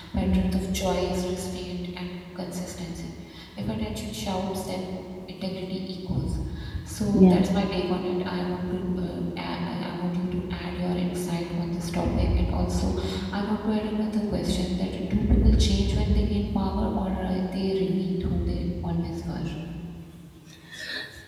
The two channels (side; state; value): both; identical; correlation 1.00